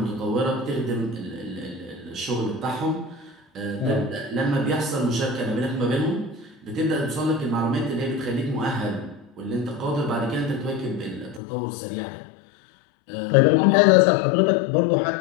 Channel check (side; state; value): right; drops out; at 11.4 s